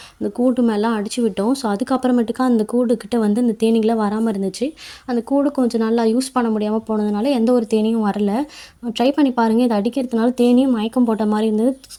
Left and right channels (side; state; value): both; identical; correlation 1.00